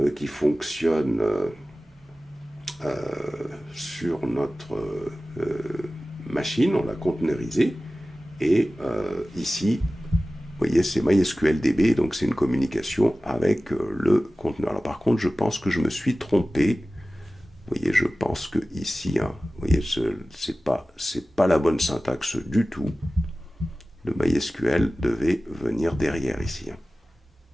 qui fonctionne sur notre machine, on l'a conteneurisé. Et ici, vous voyez, c'est MySQLDB, donc c'est une communication avec le conteneur. Alors par contre, je pense que je me suis trompé. Vous voyez, je pense que ici, hein, vous voyez, c'est pas la bonne syntaxe du tout. Le MySQL devait venir derrière ici. Hein.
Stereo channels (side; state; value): both; normal; correlation 0.96